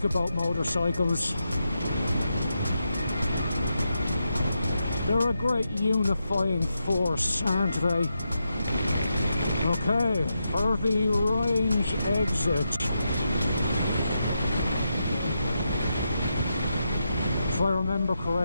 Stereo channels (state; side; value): inverted; both; correlation -0.85